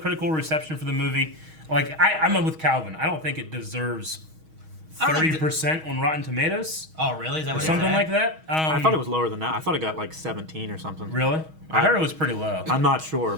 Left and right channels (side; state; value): left; late; 6.3 ms